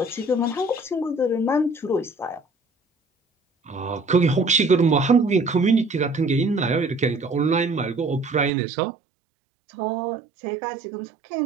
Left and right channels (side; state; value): left; drops out; at 8.5 s